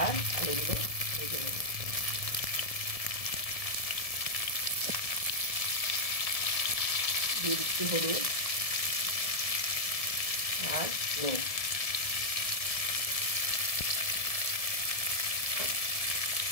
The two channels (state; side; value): late; right; 1.7 ms